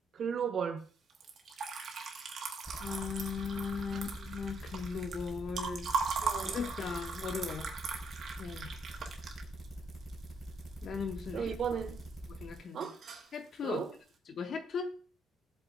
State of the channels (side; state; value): both; normal; correlation 0.72